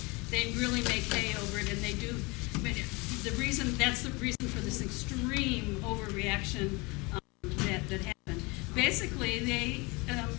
they really make hay over it, and they do. I mean, that's the reason for this extreme overreaction that happened. Basically, they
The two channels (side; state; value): right; quieter; 26.4 dB